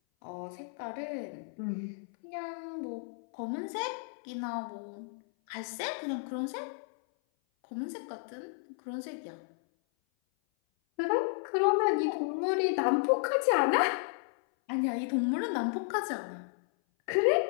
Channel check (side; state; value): right; silent; 56 dB below the other